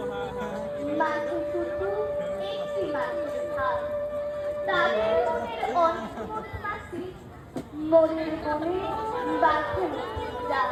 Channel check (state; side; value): identical; both; correlation 1.00